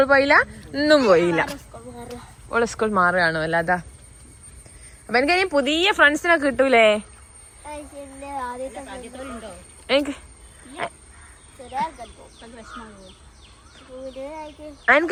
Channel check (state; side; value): identical; both; correlation 1.00